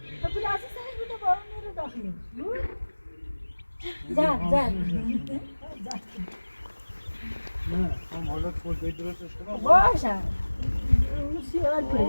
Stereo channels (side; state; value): both; inverted; correlation -1.00